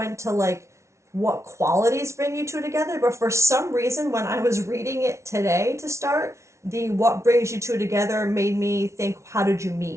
to like what qualities bring you two together, but for some reason when I was reading it today to start, the what brings you two together made me think, how did you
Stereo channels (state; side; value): late; left; 0.13 ms